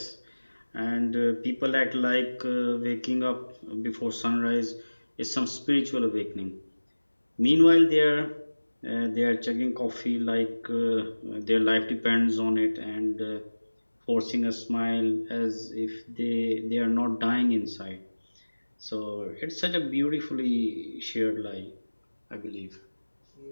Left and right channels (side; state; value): both; inverted; correlation -1.00